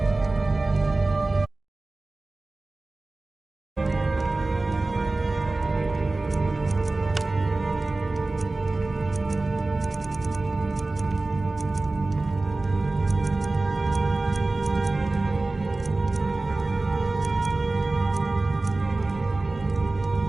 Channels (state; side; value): quieter; left; 3.2 dB